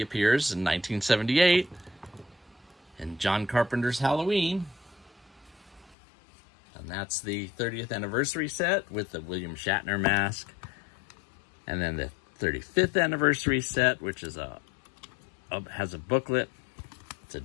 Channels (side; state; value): right; drops out; at 6.0 s